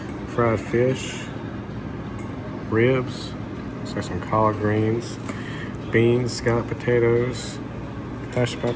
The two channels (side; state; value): both; identical; correlation 1.00